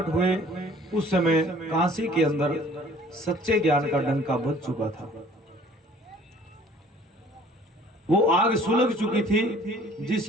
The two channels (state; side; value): normal; both; correlation 0.54